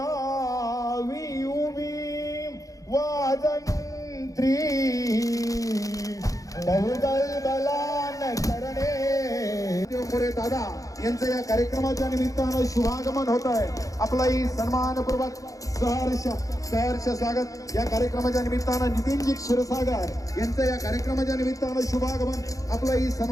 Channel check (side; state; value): right; late; 0.16 ms